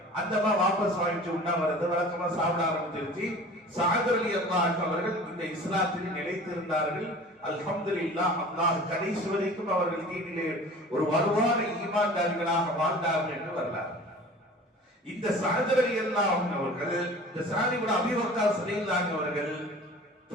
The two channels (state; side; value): normal; both; correlation 0.42